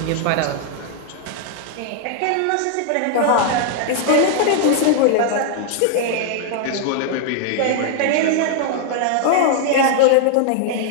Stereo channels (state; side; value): different; both; correlation -0.01